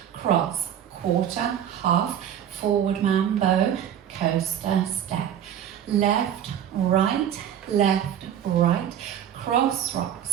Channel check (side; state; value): left; quieter; 9.7 dB